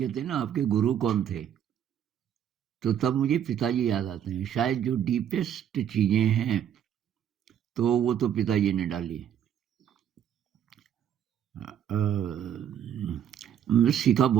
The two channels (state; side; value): quieter; left; 9.6 dB